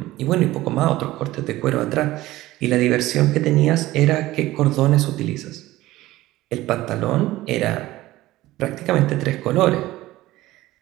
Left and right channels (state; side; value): quieter; left; 16.9 dB